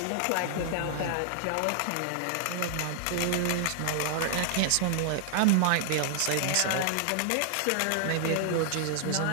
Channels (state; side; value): different; both; correlation 0.00